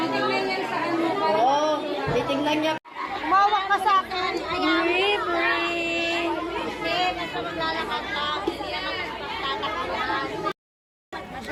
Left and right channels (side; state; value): both; identical; correlation 1.00